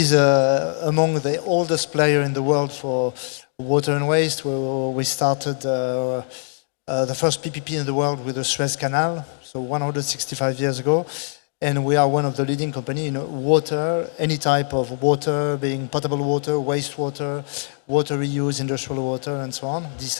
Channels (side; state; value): right; silent; digital silence